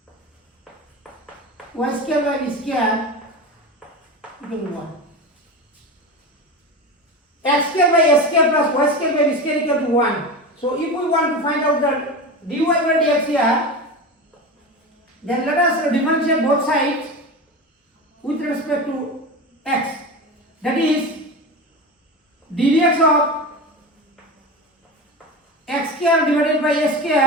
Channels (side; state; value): both; normal; correlation 0.26